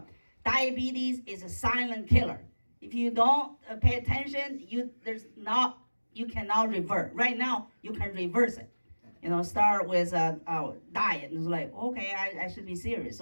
diabetes is a silent killer. If you don't pay attention, you cannot revert. Right now, you can reverse it. Start with a diet. It's like, okay, I should be serious.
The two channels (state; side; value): inverted; both; correlation -1.00